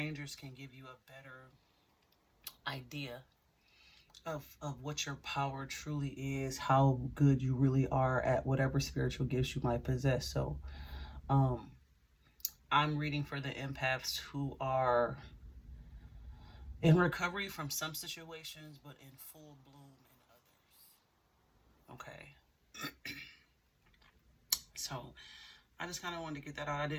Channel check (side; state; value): both; identical; correlation 1.00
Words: can give you a better idea of what your power truly is, how good you really are at whatever spiritual gifts you might possess. So um I'm reading for the empaths who are in recovery from some situations, but in full bloom in others. Okay. So I just kind of wanted to get that out. I